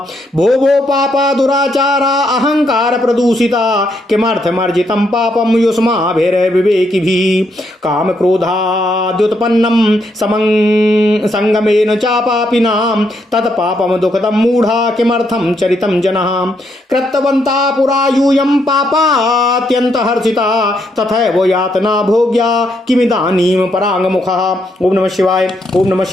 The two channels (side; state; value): both; normal; correlation 0.76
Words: भो पापा दुराचारा अहंकार प्रदूषिता किमर्थमर्जितं पापं युष्माभिर्विवेकिभिः काम क्रोधाद्युत्पन्नं संगमेन च पापिनां तत्पापं दुःखदं मूढा किमर्थं चरितं जनः कृतवन्ता पुरा यूयं पापात्यन्तहर्षिता तथैव यातना भोग्या किमिदानीं पराङ्गमुखः। ओम नमः शिवाय, ओम नमः